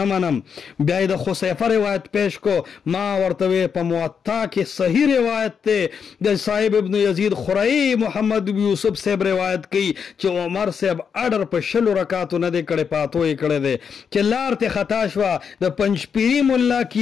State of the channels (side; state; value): right; quieter; 6.7 dB